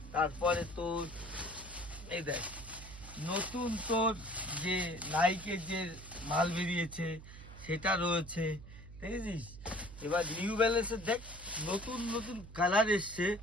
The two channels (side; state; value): right; noise; hum, 15 dB below the sound